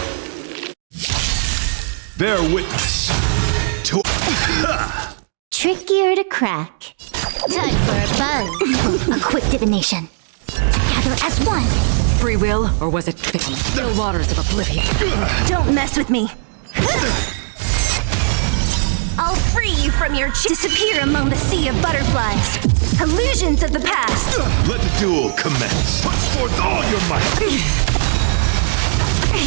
Bear witness to Trickier to crack. Time for a buzz. A quick divination. Together as one. Free will, or was it fate on the still waters of oblivion? Don't mess with me. I'll free you from your disappear among the sea of butterflies. Illusions of the past. let the duel commence. Put forth all your might.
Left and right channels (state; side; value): silent; left; digital silence